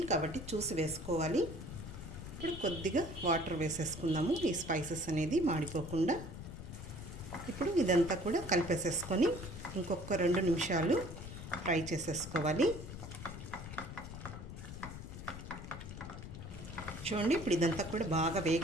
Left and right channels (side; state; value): left; noise; rumble, 10 dB below the sound